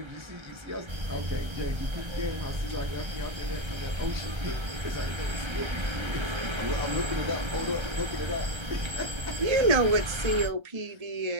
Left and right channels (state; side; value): late; left; 1.3 ms